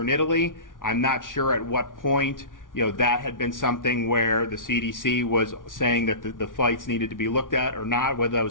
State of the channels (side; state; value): right; late; 0.88 ms